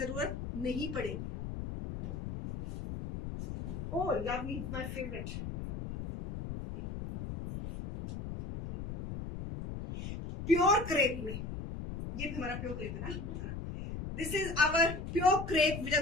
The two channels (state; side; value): noise; left; rumble, 7 dB below the sound